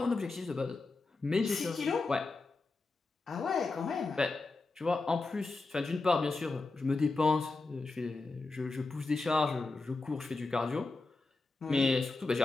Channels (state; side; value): quieter; right; 3.6 dB